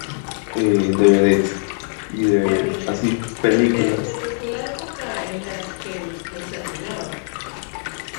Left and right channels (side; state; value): right; silent; 65 dB below the other